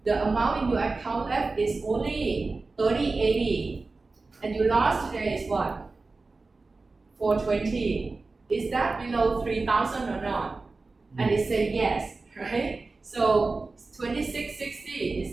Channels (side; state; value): left; quieter; 3.7 dB